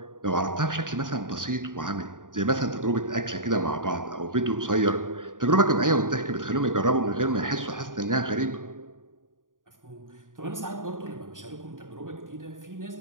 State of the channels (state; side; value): late; left; 0.89 ms